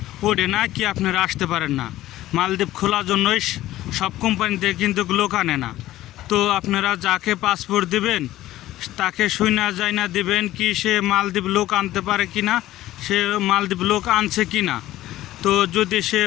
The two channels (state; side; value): quieter; right; 15.1 dB